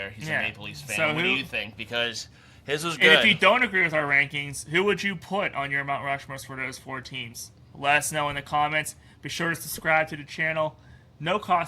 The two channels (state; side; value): identical; both; correlation 1.00